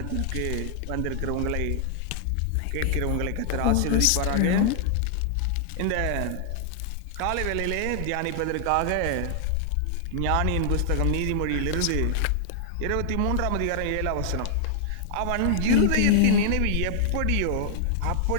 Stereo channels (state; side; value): different; both; correlation -0.01